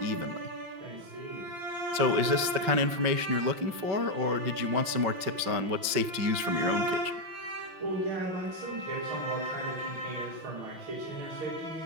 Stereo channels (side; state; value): left; late; 5.3 ms